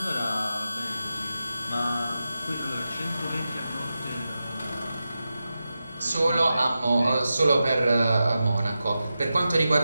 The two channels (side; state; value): both; inverted; correlation -0.91